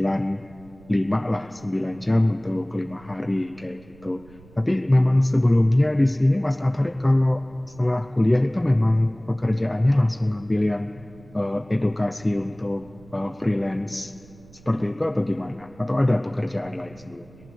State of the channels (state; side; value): noise; right; rumble, 24 dB below the sound